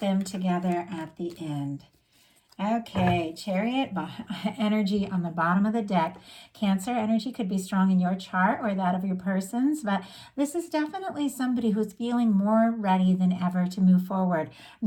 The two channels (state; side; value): identical; both; correlation 1.00